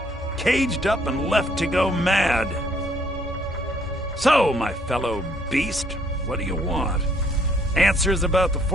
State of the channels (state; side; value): normal; both; correlation 0.65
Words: caged up and left to go mad. So, my fellow beast, what do you want? Answers about the